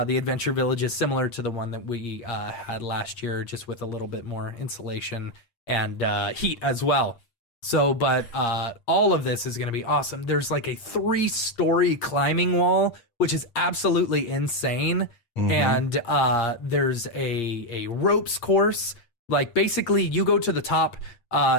Adventure Village is similar to the one that we had last year, just with a little bit more insulation and heat as well. So, but all of this is going to be awesome. There's like a 3-story climbing wall, which is absolutely insane. And there's a ropes course. Like basically you go to the top,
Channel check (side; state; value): right; late; 8.6 ms